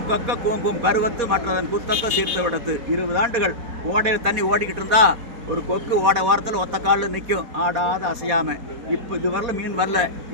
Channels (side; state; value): left; late; 4.2 ms